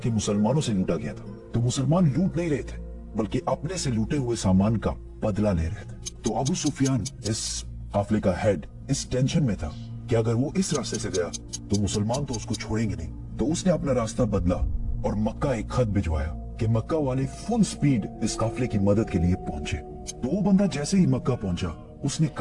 मुसलमानों से लूटा गया था। तो मुसलमान लूट नहीं रहे थे बल्कि अपने से लूटे हुए सामान का बदला ले रहे थे। तो अबू सुफियान, इस काफिले का हेड, इस टेंशन में था कि अगर वो इस रास्ते से गया तो मुसलमान तो उसको छोड़ेंगे नहीं। तो उसने अपना रास्ता बदला और मक्का एक खत भिजवाया कि मक्का वाले फुल स्पीड इस काफिले की मदद के लिए पहुंचे। तो वो बंदा जैसे ही मक्का पहुंचा उसने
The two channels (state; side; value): identical; both; correlation 1.00